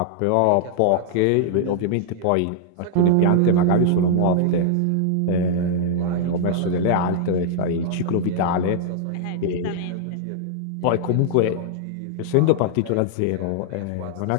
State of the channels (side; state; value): both; different; correlation -0.01